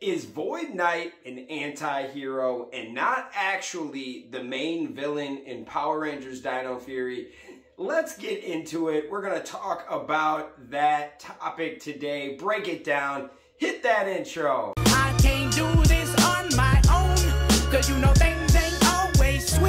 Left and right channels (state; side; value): identical; both; correlation 1.00